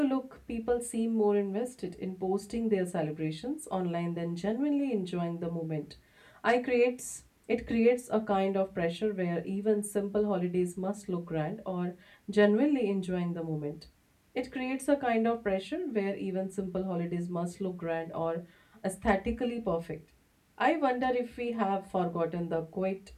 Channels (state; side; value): identical; both; correlation 1.00